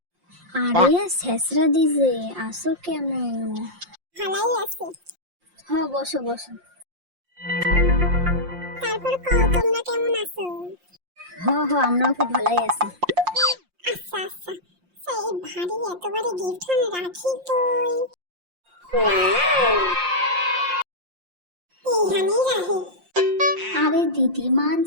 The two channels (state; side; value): late; left; 5.6 ms